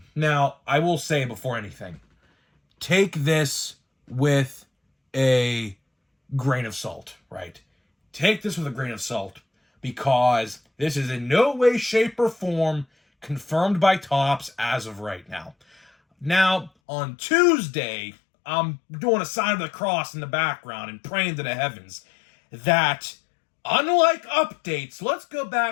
I will say before anything, take this with a grain of salt, right? Take this with a grain of salt because this is in no way, shape, or form confirmed by Topps as of right now. Now, on Tuesday, I'm doing a sign of the cross in the background and praying to the heavens that unlike updates, let's go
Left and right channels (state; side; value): drops out; right; at 16.7 s